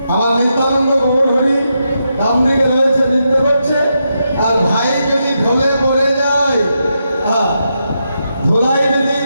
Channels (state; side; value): inverted; both; correlation -0.84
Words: আমার নিত্যানন্দ গৌর হরি ডান দিকে রয়েছে, নৃত্য করছে। আর ভাই যদি ঢলে পড়ে যায়, ধুলাই যদি